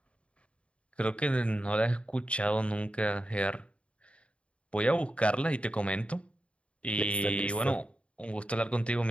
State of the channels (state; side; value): late; right; 0.060 ms